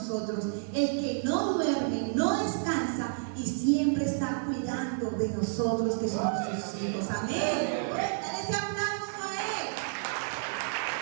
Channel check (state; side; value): silent; left; digital silence